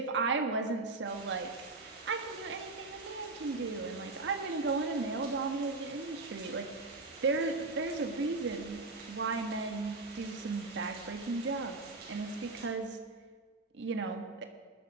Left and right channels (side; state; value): left; quieter; 3.4 dB